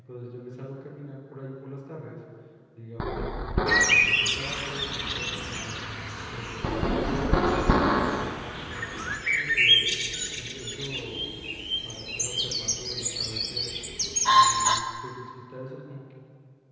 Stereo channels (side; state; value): both; identical; correlation 1.00